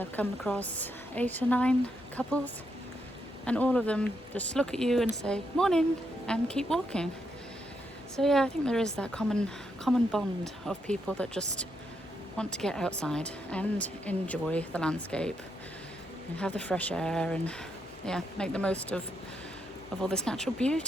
come across 8 or 9 couples, and all of them just look at you and say morning and keep walking. So yeah, I think there is that common bond of people that just want to get outside and enjoy the landscape and have the fresh air and yeah, make the most of all this natural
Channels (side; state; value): both; normal; correlation 0.80